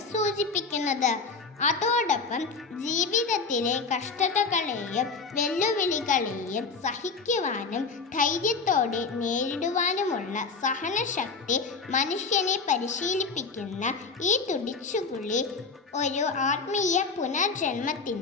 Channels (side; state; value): right; quieter; 4.6 dB